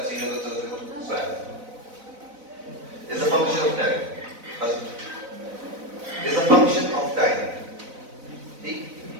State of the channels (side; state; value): left; late; 4.0 ms